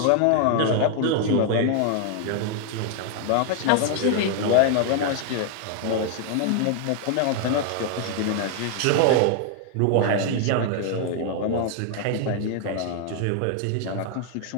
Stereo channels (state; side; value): different; both; correlation 0.00